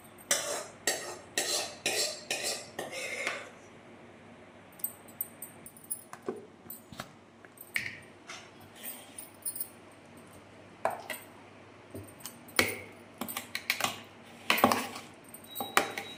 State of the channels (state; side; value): identical; both; correlation 1.00